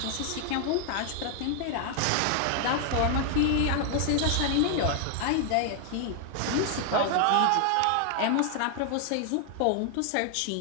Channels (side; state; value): both; different; correlation 0.00